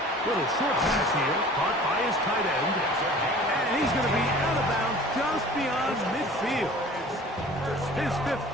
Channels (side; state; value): both; normal; correlation 0.45